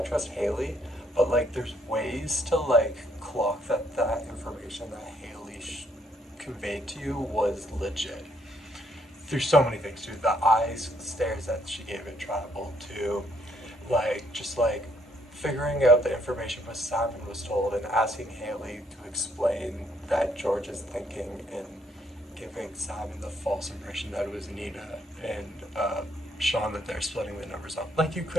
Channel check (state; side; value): normal; both; correlation 0.70